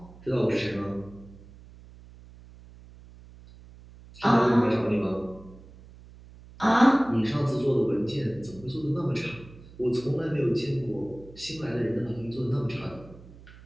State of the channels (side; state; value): right; noise; hum, 20 dB below the sound